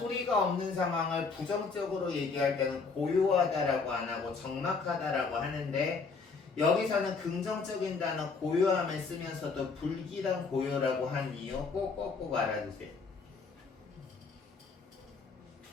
없는 상황을 부정적으로 얘기할 때는 고요하다라고 안 하고 적막하다라고 하는데 여기서는 긍정적인 단어 고요함을 쓰면서도 불길한 고요라고 한 이유 꼭꼭꼭 알아두세요.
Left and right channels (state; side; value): quieter; right; 4.7 dB